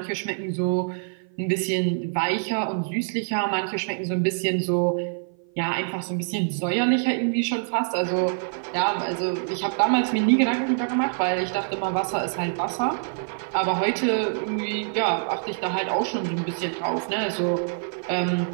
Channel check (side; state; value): left; silent; 56 dB below the other